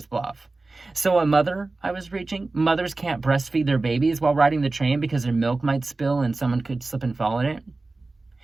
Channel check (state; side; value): quieter; left; 3.4 dB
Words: bluff. So a mother, I was reaching, mothers can't breastfeed their babies while riding the train because their milk might spill and someone could slip and fall in it?